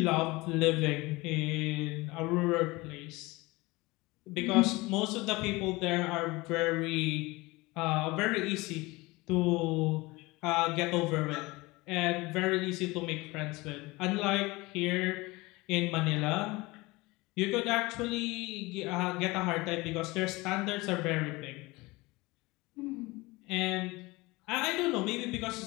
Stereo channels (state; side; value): quieter; right; 22.5 dB